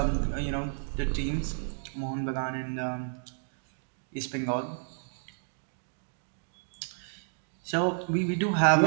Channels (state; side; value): silent; left; digital silence